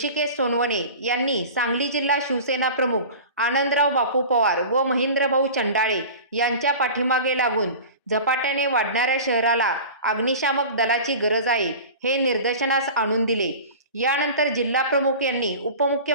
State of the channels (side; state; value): both; inverted; correlation -0.36